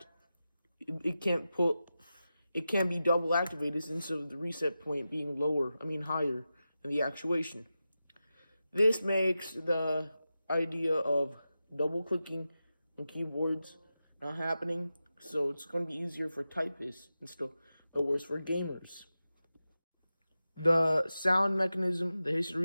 it can't be double activated instead of the reset point being higher than the actuation. This makes the idea of double clicking on keyboards not happening, so it's going to be easier for typists and stuff, but worse for gamers. The sound mechanism, the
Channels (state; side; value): inverted; both; correlation -0.92